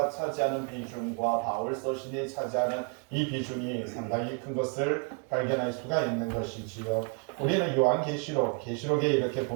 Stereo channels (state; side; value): quieter; left; 38.4 dB